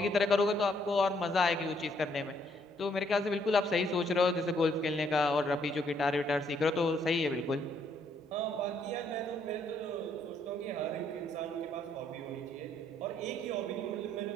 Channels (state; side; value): normal; both; correlation 0.70